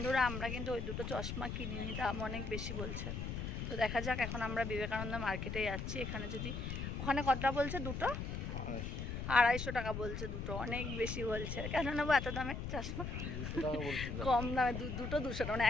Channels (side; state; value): left; noise; rumble, 4 dB below the sound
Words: আমরা কিন্তু ওই দুটো চশমা কিনিনি, দাম অনেক বেশি বলছে। তো দেখা যাক, এখন আমরা বিবেকানন্দ মার্কেটে যাচ্ছি। এখানে যদি, ওখানে কতটা বলছে দুটো? 250 টাকা বলছে দুটো, অনেক বেশি বলছে। কেন নেবো এত দামে চশমা? কম দামে দুটো 200 টাকা, মানে